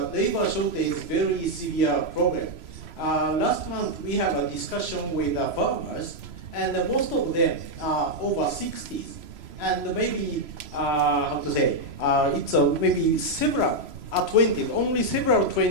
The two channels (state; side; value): late; left; 3.0 ms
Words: labor shortage, very severe problem. Last month we had a discussion with farmers, and most of them are over 60s. And maybe, how to say, it's maybe several 20s, only several